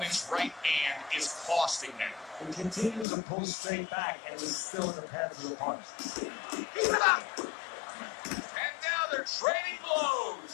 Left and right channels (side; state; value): right; drops out; at 3.1 s